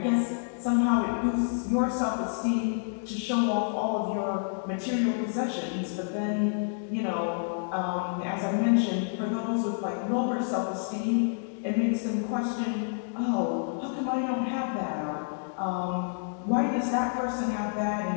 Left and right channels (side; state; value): right; silent; digital silence